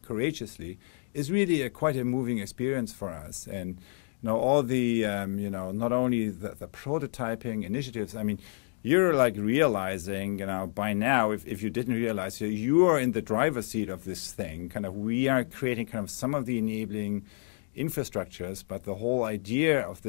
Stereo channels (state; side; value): silent; right; digital silence